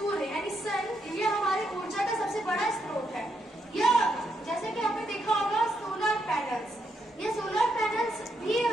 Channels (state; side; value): normal; both; correlation 0.79